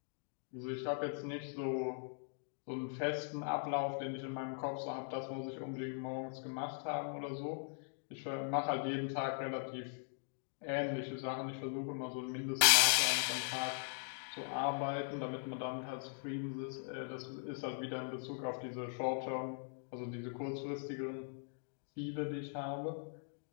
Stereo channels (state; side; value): silent; right; digital silence